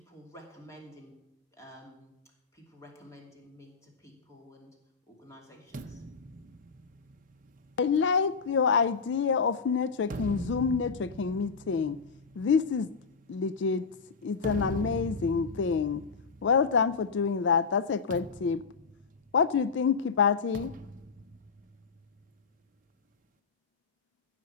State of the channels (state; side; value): quieter; right; 5.3 dB